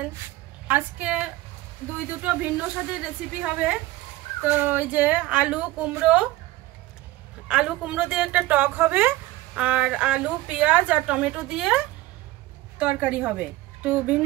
আজকে দুটো ভিন্ন স্বাদের রেসিপি হবে। তো এই যে আলু কুমড়ো দিয়ে একটা টক হবে, আর আলু পেঁয়াজ আর টমেটো দিয়ে তরকারি হবে। একটু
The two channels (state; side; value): quieter; left; 17.6 dB